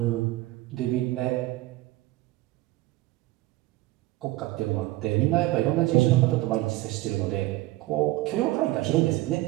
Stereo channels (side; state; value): left; quieter; 18.2 dB